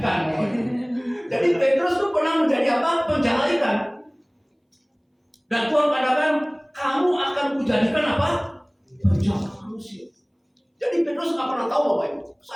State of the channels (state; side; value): identical; both; correlation 1.00